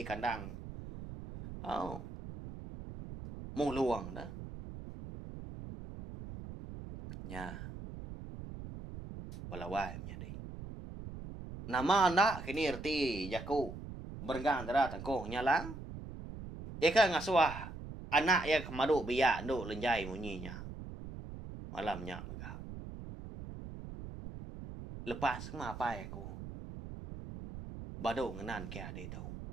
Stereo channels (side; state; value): right; noise; rumble, 10 dB below the sound